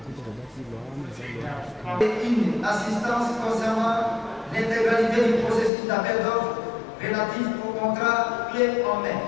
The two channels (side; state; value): right; drops out; at 5.7 s